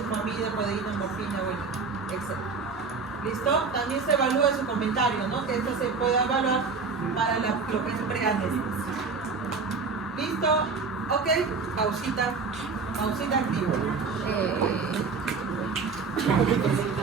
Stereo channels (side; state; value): left; quieter; 4.7 dB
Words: codeína, morfina, bueno, etc. ¿Listo? También se evalúa su comentario, ¿no? Que esto se puede evaluar para lo que es preanestesia. ¿Listo? Ok, pausita activa.